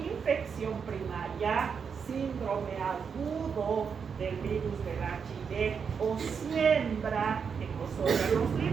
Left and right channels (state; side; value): quieter; left; 6.3 dB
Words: primaria, síndrome agudo del virus del HIV o siembra en los órganos